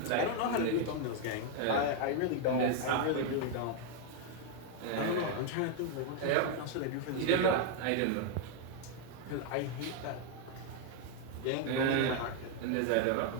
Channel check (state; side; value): different; both; correlation 0.01